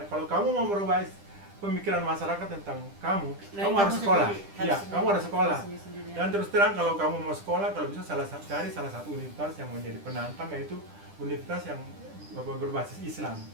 kalau kamu mau merubah pemikiran masyarakat tentang kamu harus sekolah. Kamu harus sekolah. Dan terus terang kalau kamu mau sekolah, kalau bisa cari salah satu universitas yang menjadi penantang, yaitu universitas yang berbasis Islam.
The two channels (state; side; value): late; left; 10 ms